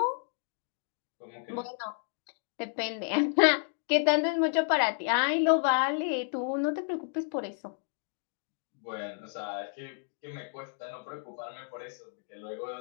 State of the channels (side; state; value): right; silent; digital silence